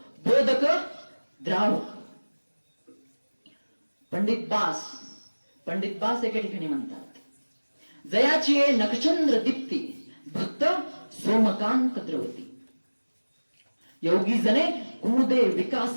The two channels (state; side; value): inverted; both; correlation -1.00